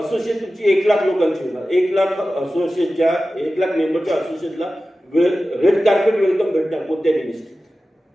तुमची 1 लाख लोकांची होणार. 1 लाख असोसिएशनच्या 1 लाख मेंबरच्या असोसिएशनला रेड कार्पेट वेलकम भेटणार कोणत्याही मिनिस्ट्रीत.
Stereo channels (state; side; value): normal; both; correlation 0.95